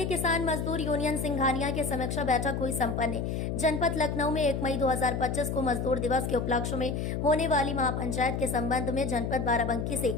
किसान मजदूर यूनियन सिंघानिया की समीक्षा बैठक हुई संपन्न। जनपद लखनऊ में 1 मई 2025 को मजदूर दिवस के उपलक्ष्य में होने वाली महापंचायत के संबंध में जनपद बाराबंकी से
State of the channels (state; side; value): noise; left; hum, 2 dB below the sound